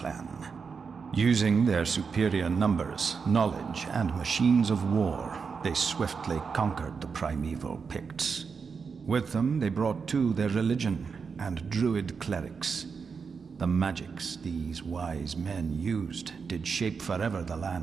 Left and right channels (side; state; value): left; quieter; 5.6 dB